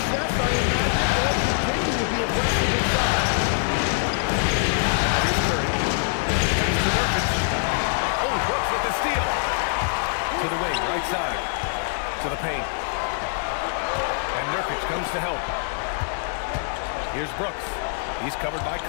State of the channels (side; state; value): right; silent; 62 dB below the other